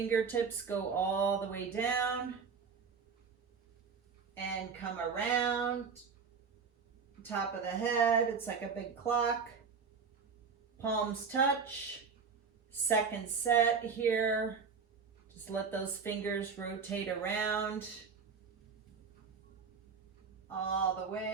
go all the way down and come around. top of the head. It's like a big clock. Palms touch. Second set here. Just let those fingers rotate around all the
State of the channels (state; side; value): quieter; left; 5.7 dB